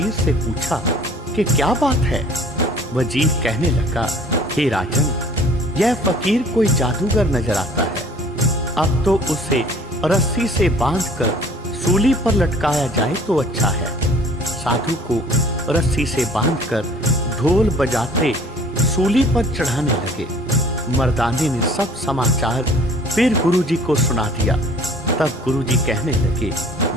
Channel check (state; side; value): normal; both; correlation 0.51